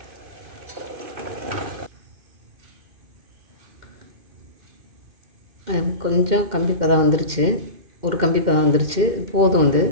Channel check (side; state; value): left; late; 2.1 ms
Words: கொஞ்சம் கம்பி பதம் வந்துருச்சு, ஒரு கம்பி பதம் வந்துருச்சு, போதும். வந்து